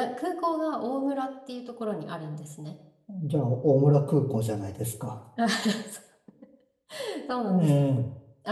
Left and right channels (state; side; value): identical; both; correlation 1.00